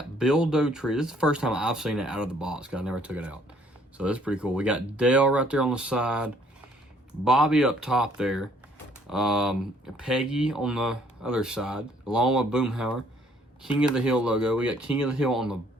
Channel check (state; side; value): normal; both; correlation 0.62